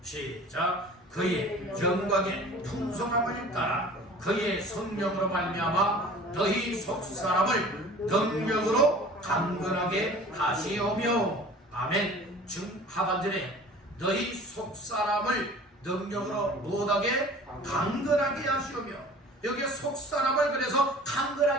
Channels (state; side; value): normal; both; correlation 0.44